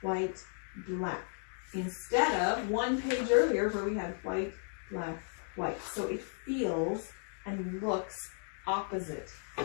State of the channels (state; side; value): silent; right; 55 dB below the other